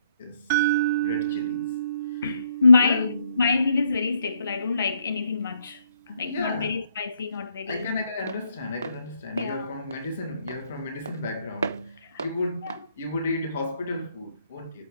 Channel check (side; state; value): both; inverted; correlation -0.71